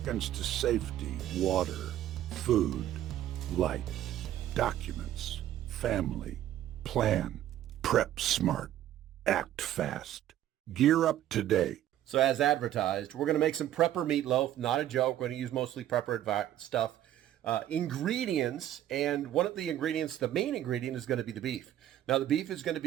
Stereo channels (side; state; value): left; quieter; 12.2 dB